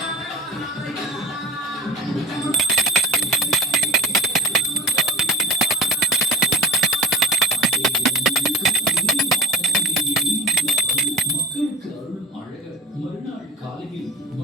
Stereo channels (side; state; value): both; normal; correlation 0.40